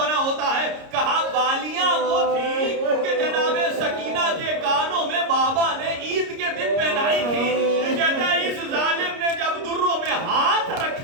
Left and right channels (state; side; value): late; left; 30 ms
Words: ہوتا ہے۔ کہا بالیاں وہ تھی کہ جناب سکینہ کے کانوں میں بابا نے عید کے دن پہنائی تھی۔ کہتا ہے اس ظالم نے جب دروں میں ہاتھ